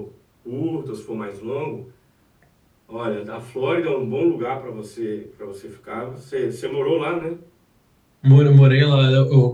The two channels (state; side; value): identical; both; correlation 1.00